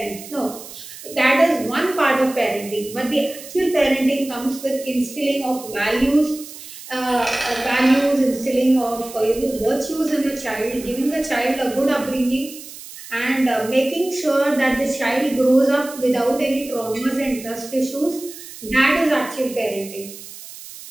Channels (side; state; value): right; noise; hiss, 15 dB below the sound